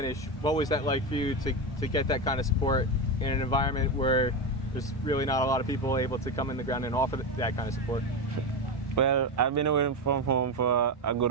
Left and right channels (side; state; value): both; normal; correlation 0.14